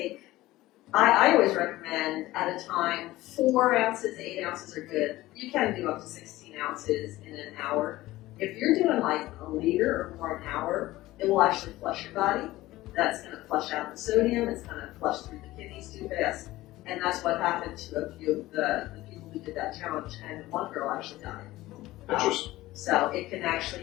I always recommend at a time, 4 ounces, 8 ounces are good. You can do up to 16 ounces in an hour. If you're doing like a liter or more an hour, it will actually flush your body. That's going to flush out the sodium. It's going to flush through the kidneys too fast. And that's what happened to a few of the people who did that challenge. And one girl actually died. Interesting. So it can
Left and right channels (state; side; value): quieter; right; 17.3 dB